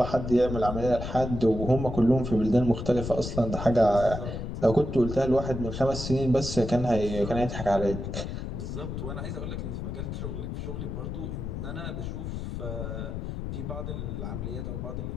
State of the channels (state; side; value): noise; left; rumble, 5 dB below the sound